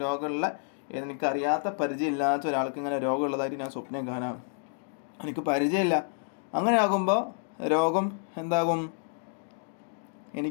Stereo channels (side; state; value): right; silent; digital silence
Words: രോഗമുള്ള, എനിക്കറിയാത്ത പരിചയമില്ലാത്ത ഒരാൾക്ക് ഇങ്ങനെ രോഗമുള്ളതായിട്ട് ഞാൻ സ്വപ്നം കാണാം, എനിക്ക് പരിചയമില്ല. അങ്ങനെ ആകുമ്പോൾ രോഗം എന്താകും,